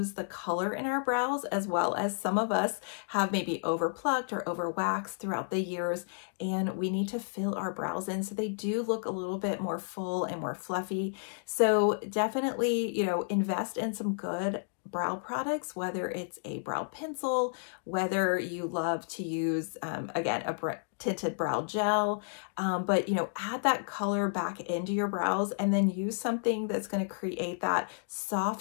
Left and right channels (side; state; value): right; silent; digital silence